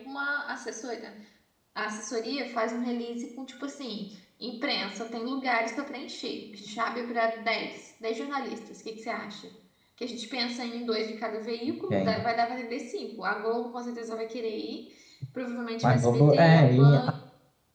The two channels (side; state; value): both; identical; correlation 1.00